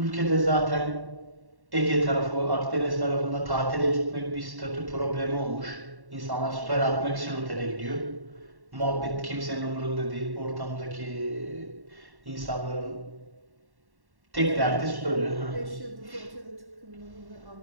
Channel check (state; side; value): late; left; 1.1 ms